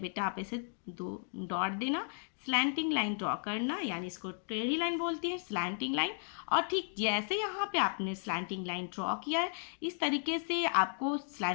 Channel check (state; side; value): silent; right; 55 dB below the other